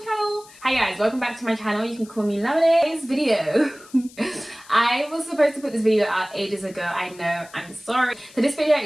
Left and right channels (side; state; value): left; noise; hiss, 22 dB below the sound